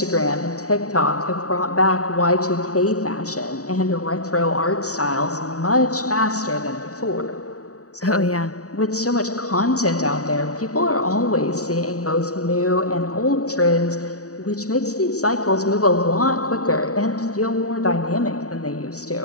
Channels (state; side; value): late; right; 0.66 ms